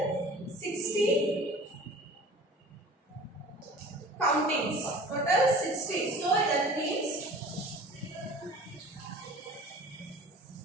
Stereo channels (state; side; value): normal; both; correlation 0.43